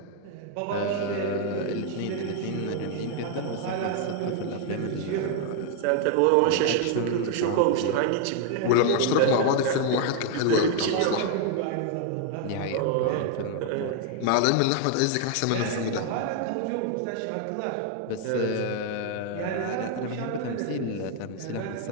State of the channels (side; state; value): both; different; correlation 0.00